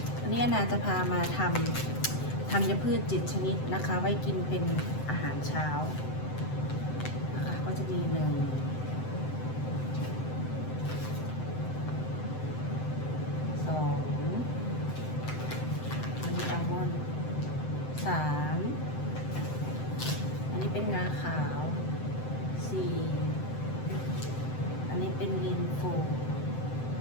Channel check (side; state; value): right; late; 7.8 ms